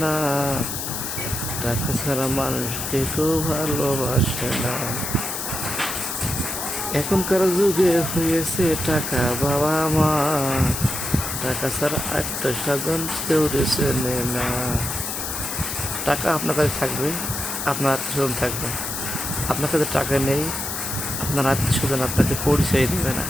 না, টাকা ছাড়া মানুষকে কেউ ভালোবাসে না। এখনকার যুগে হয়েছে টাকা বাবা মা, টাকা ছাড়া আত্মীয় স্বজন কেউ চেনে না। টাকা আপনার কাছে থাকবে, আপনার আত্মীয় স্বজন থাকবে। আপনার কাছে টাকা নেই, আপনার আত্মীয় স্বজন আপনাকে পরিচয় দেবে না।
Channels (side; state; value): left; noise; hiss, 4 dB below the sound